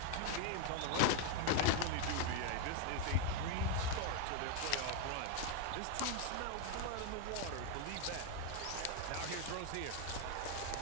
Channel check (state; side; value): different; both; correlation 0.01